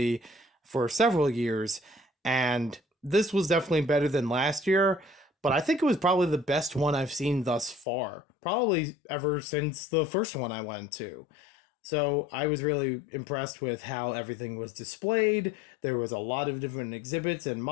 for several years, and this was definitely better than last year, but I think it was probably the best one I've seen thus far. Probably ever since the first one I went to. So I was really impressed with how everything was displayed. There was a lot of different exhibits and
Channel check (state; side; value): drops out; right; at 7.9 s